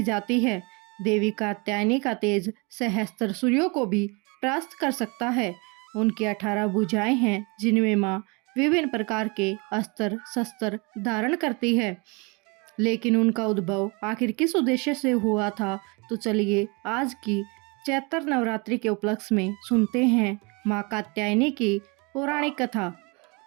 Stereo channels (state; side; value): quieter; left; 29.6 dB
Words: जाती है। देवी कात्यायनी का तेज सहस्त्र सूर्यों को भी परास्त कर सकता है। उनकी 18 भुजाएं हैं जिनमें माँ विभिन्न प्रकार के अस्त्र शस्त्र धारण करती है। लेकिन उनका उद्भव आखिर किस उद्देश्य से हुआ था, तो चलिए आज की चैत्र नवरात्रि के उपलक्ष्य में सुनते हैं माँ कात्यायनी की पौराणिक कथा।